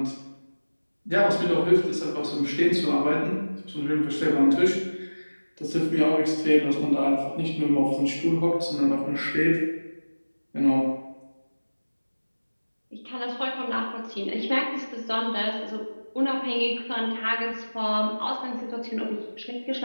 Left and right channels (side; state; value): both; inverted; correlation -1.00